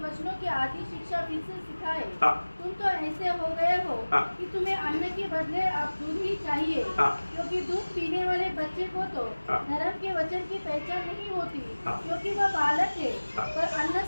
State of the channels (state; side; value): inverted; both; correlation -1.00